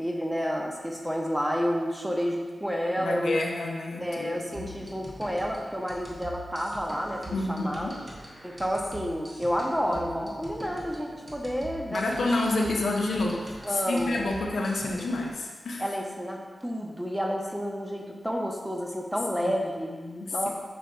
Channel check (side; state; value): both; normal; correlation 0.94